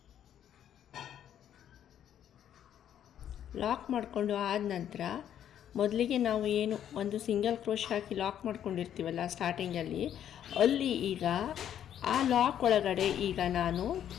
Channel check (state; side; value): quieter; right; 10.1 dB